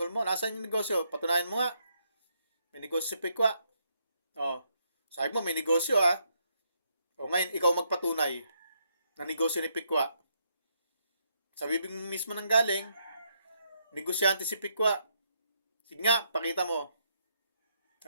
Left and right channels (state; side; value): inverted; both; correlation -0.76